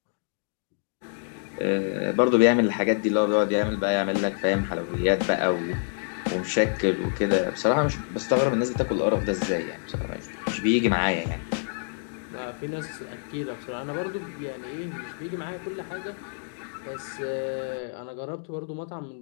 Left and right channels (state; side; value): silent; right; digital silence